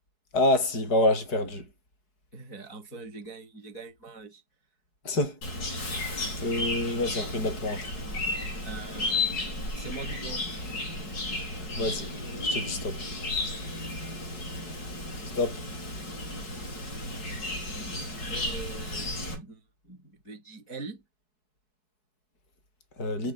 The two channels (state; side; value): late; right; 4.7 ms